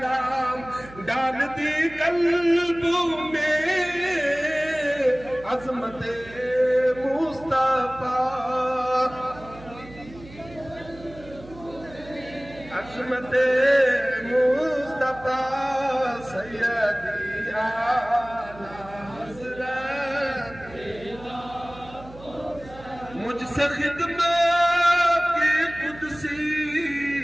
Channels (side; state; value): right; noise; hum, 19 dB below the sound